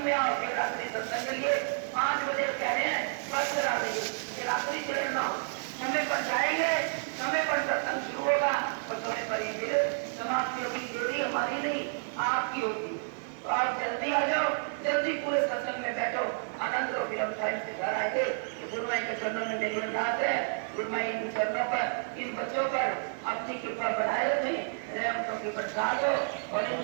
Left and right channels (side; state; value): left; silent; digital silence